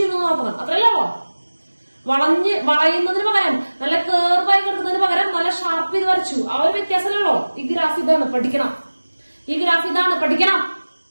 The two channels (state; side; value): inverted; both; correlation -1.00